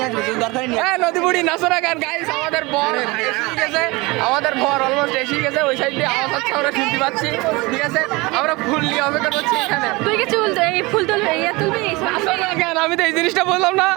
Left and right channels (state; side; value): quieter; left; 23.9 dB